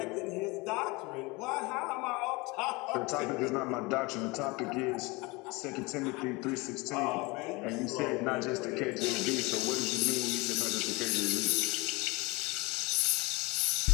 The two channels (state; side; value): quieter; right; 24.9 dB